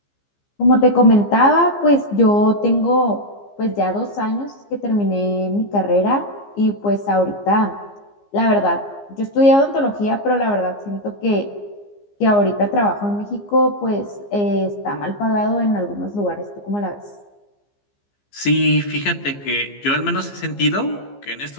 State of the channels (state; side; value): late; right; 15 ms